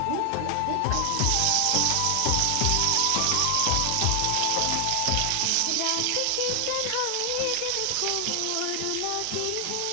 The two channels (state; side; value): different; both; correlation 0.00